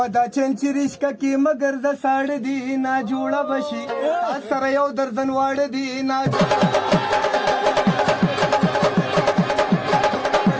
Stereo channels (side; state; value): both; identical; correlation 1.00